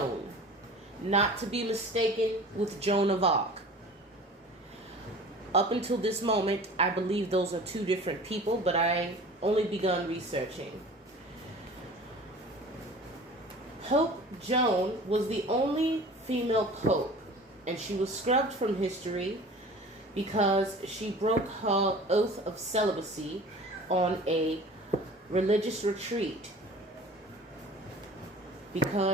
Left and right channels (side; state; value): both; normal; correlation 0.42